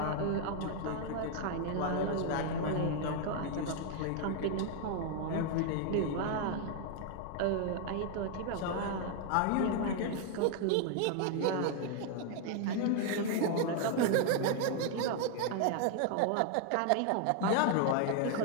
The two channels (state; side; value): different; both; correlation 0.00